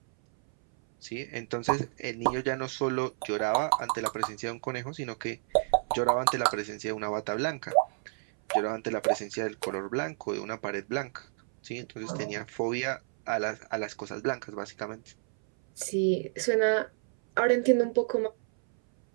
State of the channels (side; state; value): left; silent; 58 dB below the other